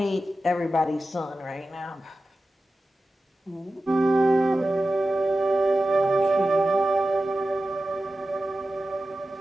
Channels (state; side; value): normal; both; correlation 0.94